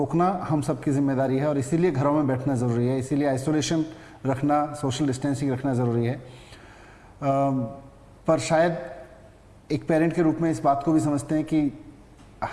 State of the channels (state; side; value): identical; both; correlation 1.00